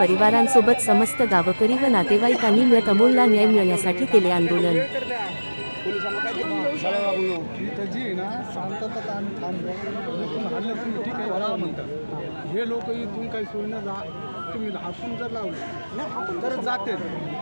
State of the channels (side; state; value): both; inverted; correlation -1.00